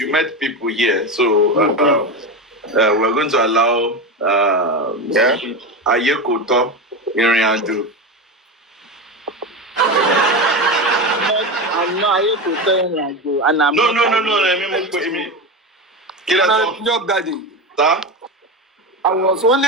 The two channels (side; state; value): both; normal; correlation 0.20